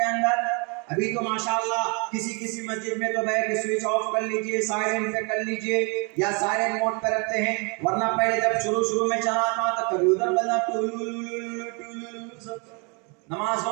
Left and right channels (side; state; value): left; quieter; 33.3 dB